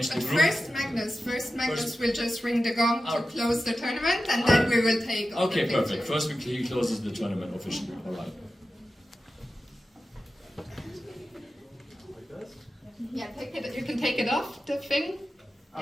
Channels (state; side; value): normal; both; correlation 0.93